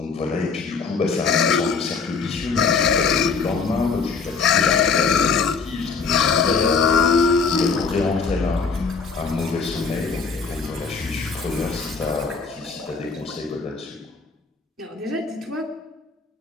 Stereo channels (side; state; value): right; quieter; 5.0 dB